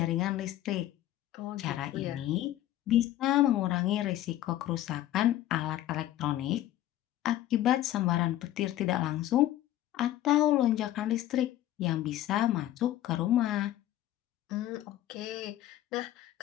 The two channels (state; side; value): quieter; right; 13.5 dB